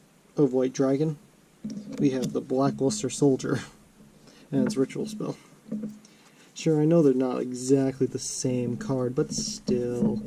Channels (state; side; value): identical; both; correlation 1.00